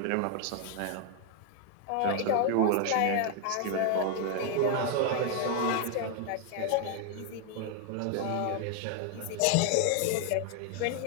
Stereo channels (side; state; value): both; different; correlation 0.01